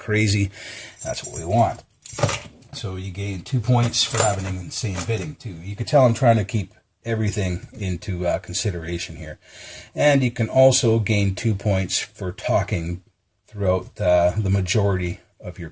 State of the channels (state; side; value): identical; both; correlation 1.00